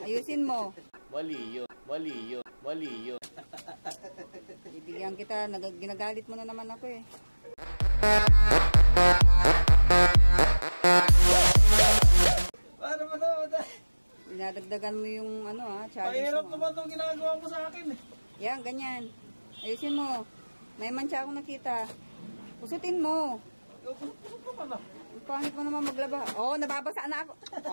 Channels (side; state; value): both; inverted; correlation -1.00